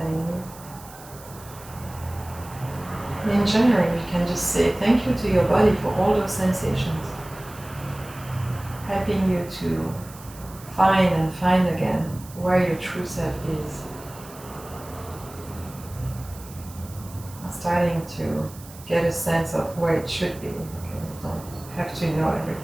me. In general, you can just say thank you to your body for all those sensations, helping you to find again where your true self is. Starting to get a sense of where it should be. Okay, you don't have to know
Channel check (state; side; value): noise; right; hiss, 19 dB below the sound